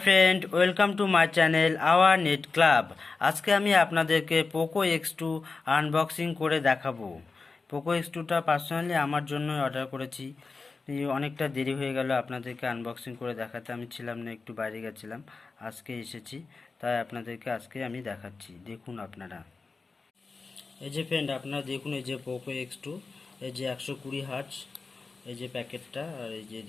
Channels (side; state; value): right; quieter; 4.2 dB